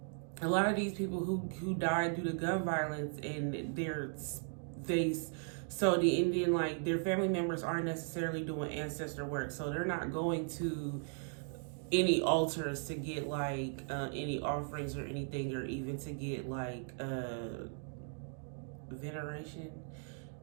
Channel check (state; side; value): silent; left; 53 dB below the other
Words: a lot of these people who died due to gun violence and so the Indian, like their family members aren't necessarily doing ancestor work, so they're not going to any altars to get like any offerings or anything, or even to get like veneration,